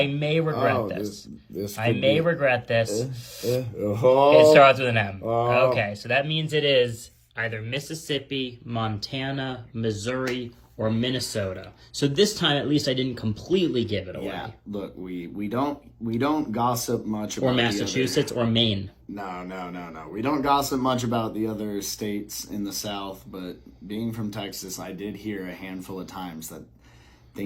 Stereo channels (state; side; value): identical; both; correlation 1.00